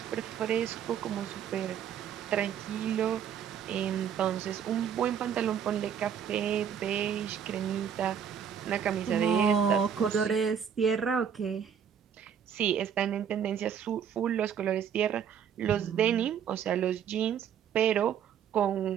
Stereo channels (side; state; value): left; quieter; 8.2 dB